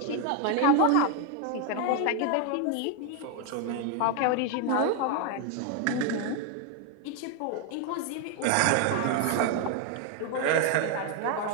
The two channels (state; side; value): different; both; correlation 0.01